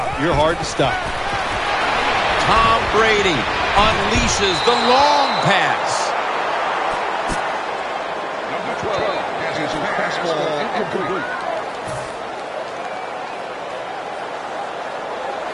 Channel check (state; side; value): identical; both; correlation 1.00